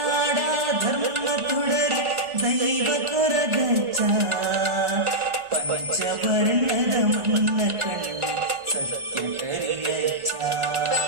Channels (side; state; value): left; late; 1.4 ms